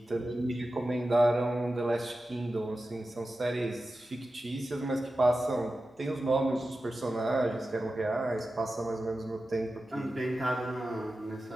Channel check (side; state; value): both; normal; correlation 0.93